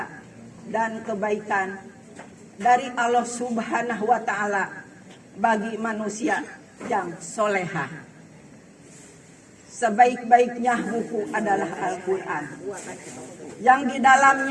dan kebaikan dari Allah Subhanahu wa taala bagi manusia yang solehah. Sebaik-baiknya buku adalah Al-Quran, yang di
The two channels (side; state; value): both; identical; correlation 1.00